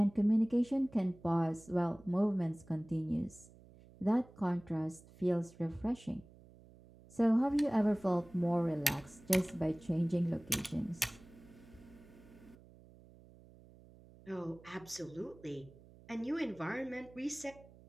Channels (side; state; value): right; noise; hum, 23 dB below the sound